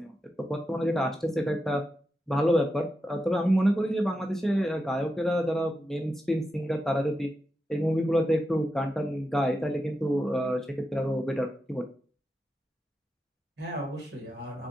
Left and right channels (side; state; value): both; normal; correlation 0.88